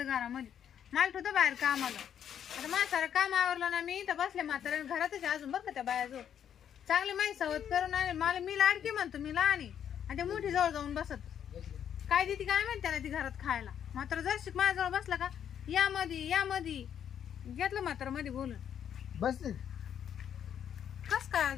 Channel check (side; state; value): right; quieter; 9.1 dB